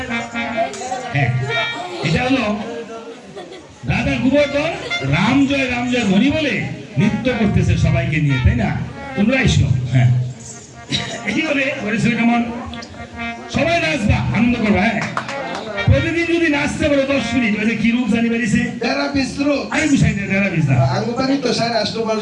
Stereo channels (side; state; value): both; identical; correlation 1.00